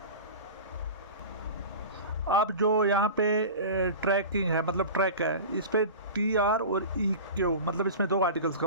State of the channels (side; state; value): both; inverted; correlation -0.33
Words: अब जो यहाँ पे ट्रैकिंग है, मतलब ट्रैक है, इस पे TR और EQ, मतलब इसमें दो आर्टिकल्स